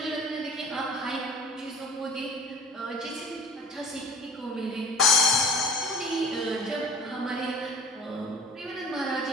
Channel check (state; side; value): normal; both; correlation 0.42